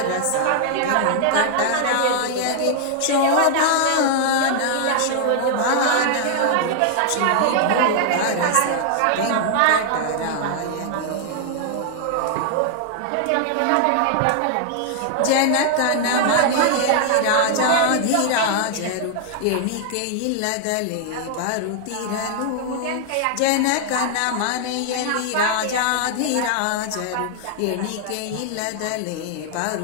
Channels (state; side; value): different; both; correlation 0.00